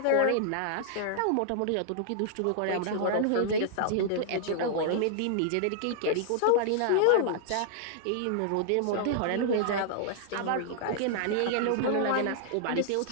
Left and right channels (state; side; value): different; both; correlation -0.01